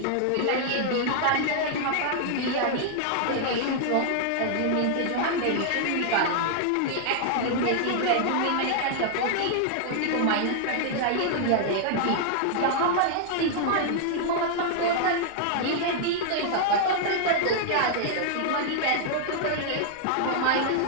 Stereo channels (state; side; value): different; both; correlation -0.01